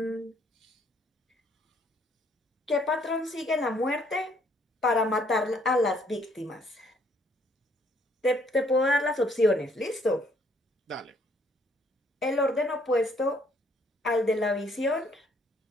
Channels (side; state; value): both; normal; correlation 0.65